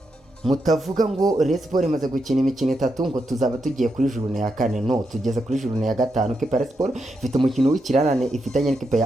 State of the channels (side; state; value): both; normal; correlation 0.84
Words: mutavuga ngo Rayon Sport imaze gukina imikino 3 ngo tuzaba tugiye kuri journée ya 4. No, tugeze kuri journée ya 5. Rayon Sport ifite umukino w'ikirarane ifitanye n'ikipe